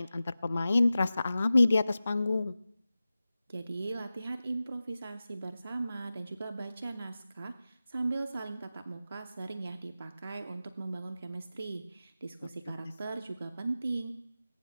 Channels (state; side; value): inverted; both; correlation -0.95